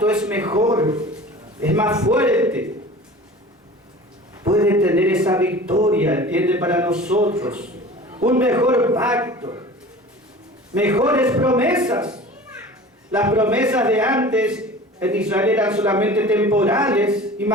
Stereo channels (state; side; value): normal; both; correlation 0.40